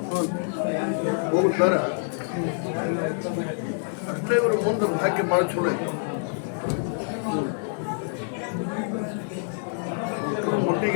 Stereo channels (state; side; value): silent; right; digital silence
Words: ಹೋಗ್ತಾರ ಅಷ್ಟೇ ಇವರು ಮುಂದೆ ಭಾಗ್ಯ ಭಾಳ ಚಲೋ ಐತೆ.